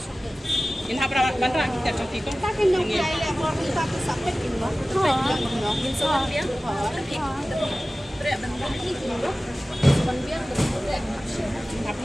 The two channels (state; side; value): normal; both; correlation 0.97